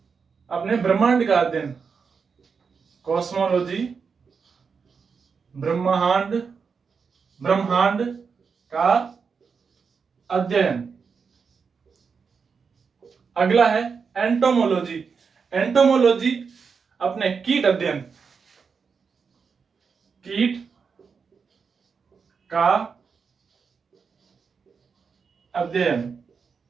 अपने ब्रह्मांड का अध्ययन। कॉस्मोलॉजी ब्रह्मांड, ब्रह्मांड का अध्ययन। अगला है एंटोमोलॉजी। एंटोमोलॉजी अपने कीट अध्ययन, कीट का अध्ययन।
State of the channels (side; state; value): left; quieter; 5.7 dB